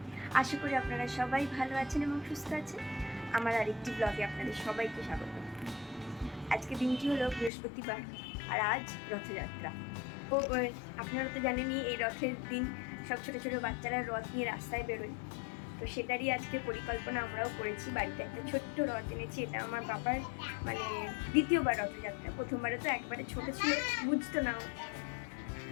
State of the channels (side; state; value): right; drops out; at 7.5 s